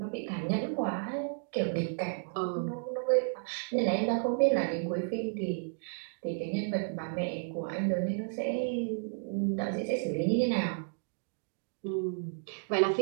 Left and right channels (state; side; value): silent; left; digital silence